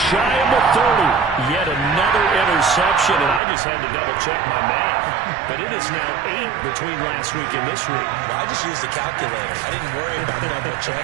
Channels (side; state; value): left; drops out; at 3.4 s